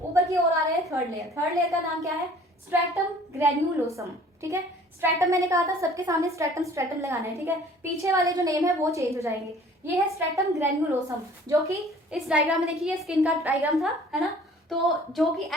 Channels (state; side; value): normal; both; correlation 0.51